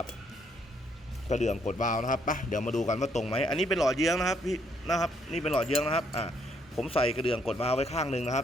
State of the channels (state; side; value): normal; both; correlation 0.70